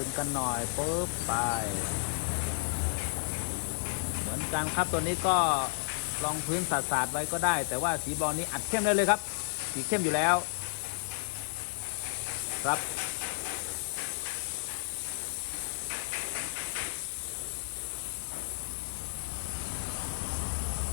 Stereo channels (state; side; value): silent; right; 56 dB below the other